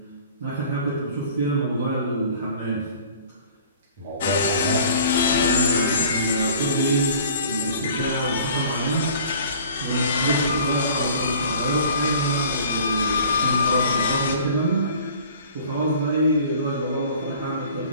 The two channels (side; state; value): both; inverted; correlation -0.48